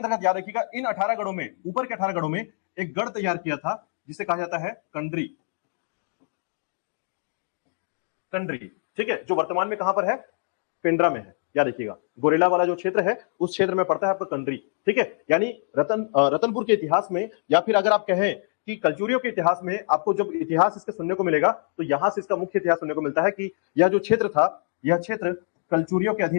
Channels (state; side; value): silent; right; digital silence